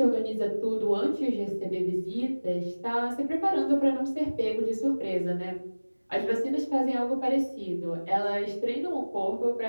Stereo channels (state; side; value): inverted; both; correlation -1.00